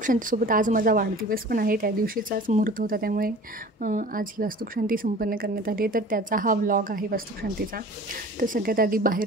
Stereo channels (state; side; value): normal; both; correlation 0.43